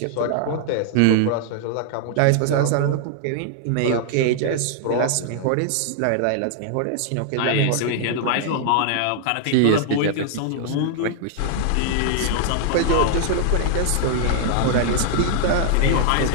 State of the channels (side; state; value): both; different; correlation -0.01